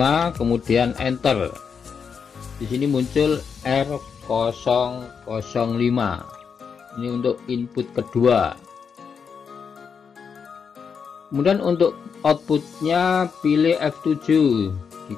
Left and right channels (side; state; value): right; quieter; 6.3 dB